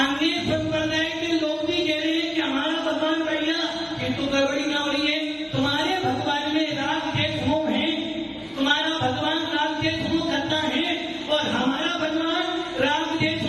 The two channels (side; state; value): both; identical; correlation 1.00